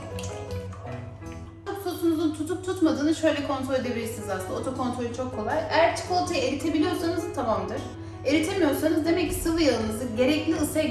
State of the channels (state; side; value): identical; both; correlation 1.00